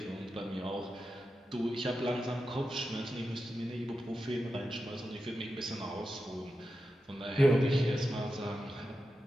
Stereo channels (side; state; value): both; normal; correlation 0.90